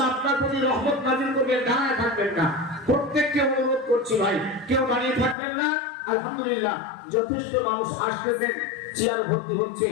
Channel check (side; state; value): right; drops out; at 5.4 s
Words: আপনার প্রতি রহমত নাজিল করবেন, দাঁড়ায় থাকবেন না। প্রত্যেককে অনুরোধ করছি ভাই, কেউ দাঁড়িয়ে থাকবেন না। আলহামদুলিল্লাহ যথেষ্ট মানুষ আসতেছেন, চেয়ার ভর্তি হচ্ছে,